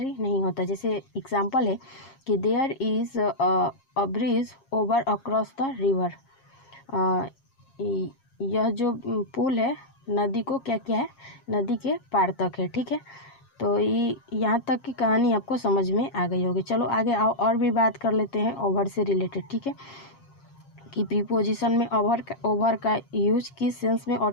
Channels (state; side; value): late; right; 7.4 ms